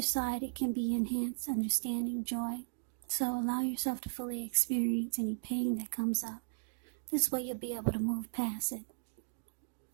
side, it can be enhanced understanding, joy. So allow yourself to fully experience any pain that comes up. This way you'll be able to move past it.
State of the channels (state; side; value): silent; left; digital silence